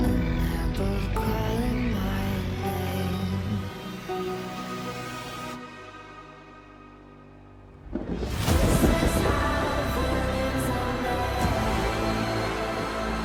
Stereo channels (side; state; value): both; identical; correlation 1.00